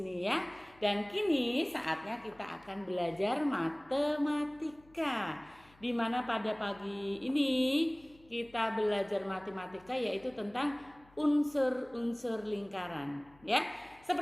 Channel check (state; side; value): noise; left; hum, 28 dB below the sound